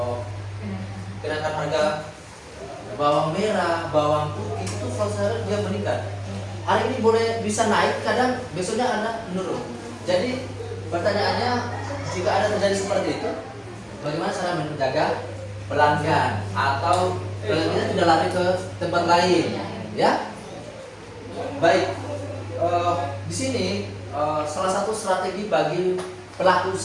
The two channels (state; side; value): identical; both; correlation 1.00